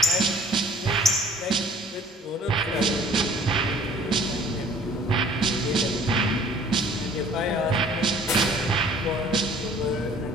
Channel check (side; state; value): both; normal; correlation 0.53